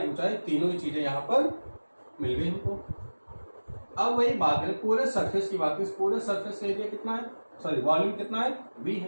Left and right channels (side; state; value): both; inverted; correlation -1.00